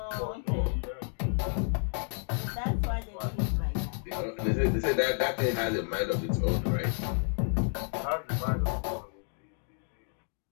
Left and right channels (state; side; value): silent; right; 57 dB below the other